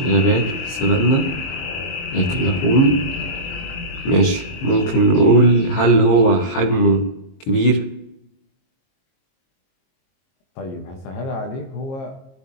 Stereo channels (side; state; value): right; late; 22 ms